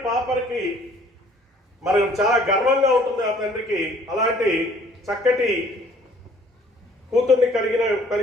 పాపకి మరి చాలా గర్వంగా ఉంటుంది ఆ తండ్రికి. అలాంటి చక్కటి కూతుర్ని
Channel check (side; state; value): both; normal; correlation 0.57